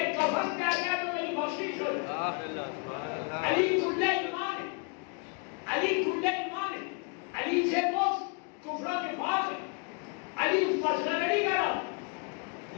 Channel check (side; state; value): right; quieter; 34.0 dB